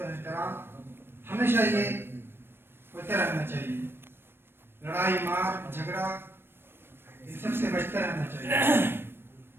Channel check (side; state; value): left; late; 0.11 ms